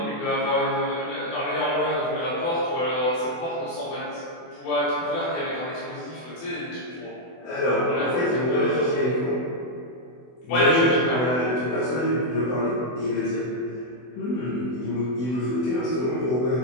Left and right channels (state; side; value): late; right; 24 ms